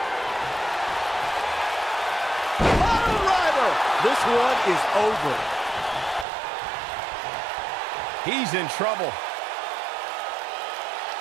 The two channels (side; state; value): left; drops out; at 6.2 s